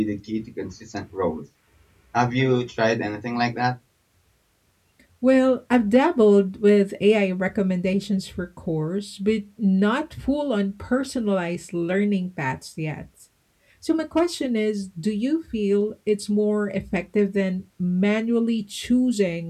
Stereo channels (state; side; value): identical; both; correlation 1.00